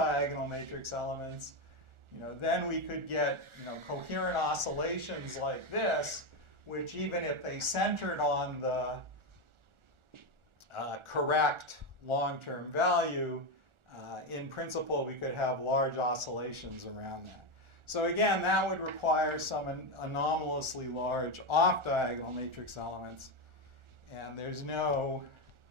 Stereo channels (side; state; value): left; late; 1.4 ms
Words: matrix elements, then we could get coherent oscillations like this, which even if they centered on the correct long-term value, in principle we could have large oscillations around that. So again, that would require some anomalously large off-diagonal matrix elements, and there's no